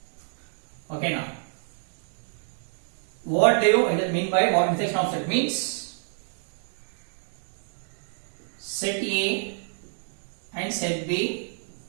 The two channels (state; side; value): silent; left; digital silence